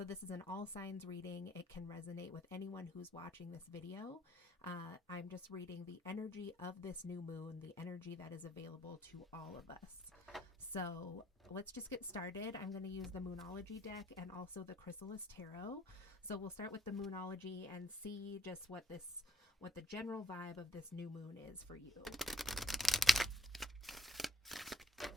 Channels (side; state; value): both; normal; correlation 0.65